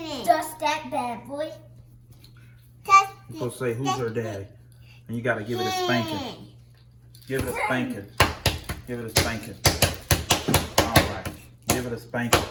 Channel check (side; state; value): both; identical; correlation 1.00